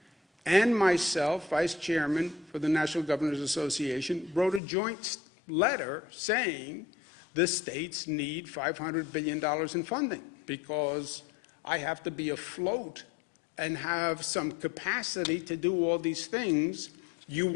and myself, vice chairman for the National Governors Association, wrote a joint letter saying the states need $500 billion in funding because I have to be afloat and have some capacity to do all these things you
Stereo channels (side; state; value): right; drops out; at 4.6 s